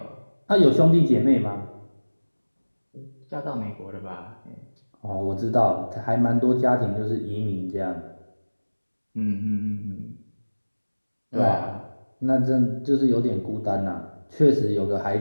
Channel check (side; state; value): both; inverted; correlation -1.00